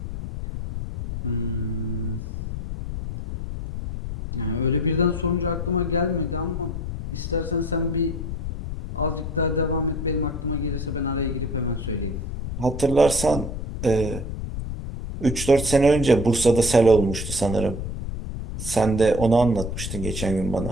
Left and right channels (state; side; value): noise; left; rumble, 6 dB below the sound